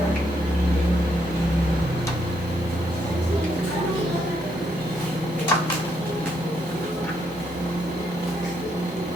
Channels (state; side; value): normal; both; correlation 0.75